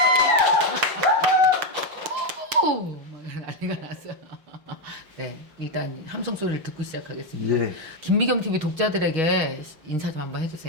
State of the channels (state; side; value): late; left; 5.7 ms